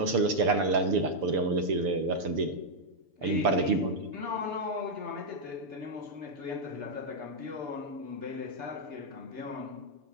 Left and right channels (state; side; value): late; left; 6.9 ms